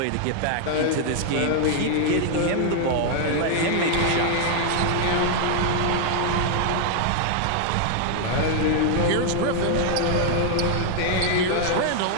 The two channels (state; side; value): different; both; correlation 0.00